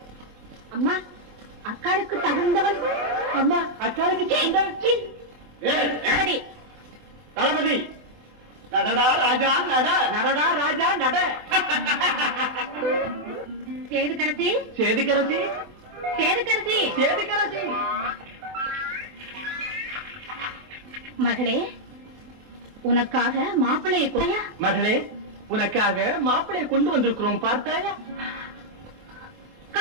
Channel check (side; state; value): left; late; 24 ms